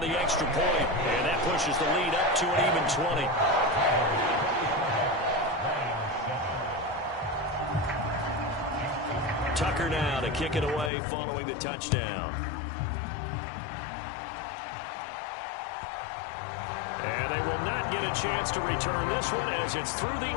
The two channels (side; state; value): right; drops out; at 10.9 s